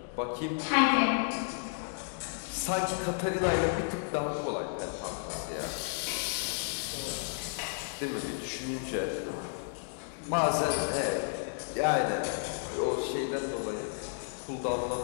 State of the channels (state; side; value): silent; right; digital silence